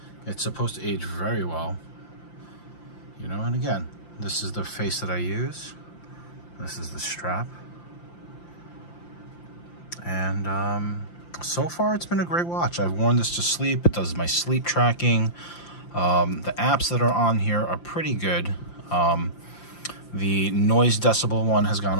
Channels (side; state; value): right; late; 5.8 ms